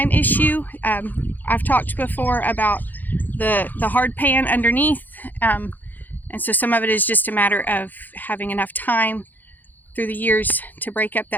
issue. I've talked before about the hard pan underneath, and so some of it is just a matter of having enough time through the years to break up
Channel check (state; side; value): late; right; 0.085 ms